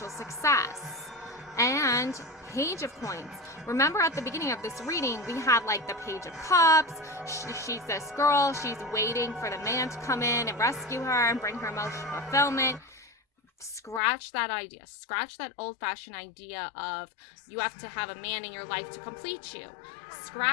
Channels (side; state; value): right; drops out; at 14.0 s